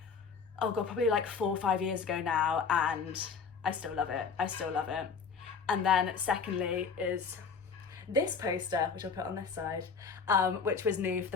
oh god, probably like 4 or 5 years ago now, and I still love it. I still love it. And then secondly is this poster, which I'll put on this side, which was new for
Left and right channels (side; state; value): right; quieter; 5.6 dB